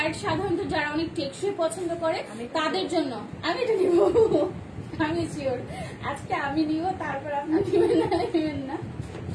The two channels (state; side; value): identical; both; correlation 1.00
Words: সাধারণত যারা অনেক টেকসই পছন্দ করে তাদের জন্য। আমি এটা নিব, আমি শিওর আজকে আমি নিব, তারপর আপনি নেবেন না,